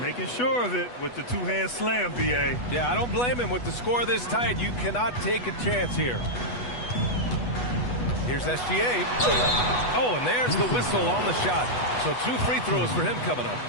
Making sure of it with the two-hand slam, B.A. Yeah, I don't blame him. With the score this tight, you cannot take a chance here. Here's SGA. Oh, and there's the whistle on the shot. So 2 free throws for him coming up.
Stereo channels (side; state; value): right; late; 8.2 ms